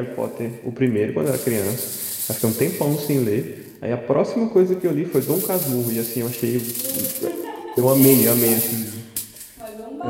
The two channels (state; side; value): identical; both; correlation 1.00